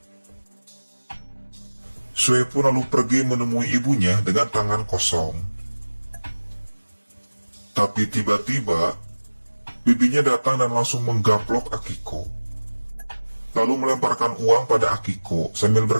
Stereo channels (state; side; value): inverted; both; correlation -1.00